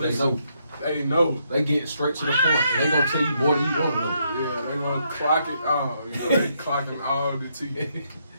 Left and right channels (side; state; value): both; inverted; correlation -0.75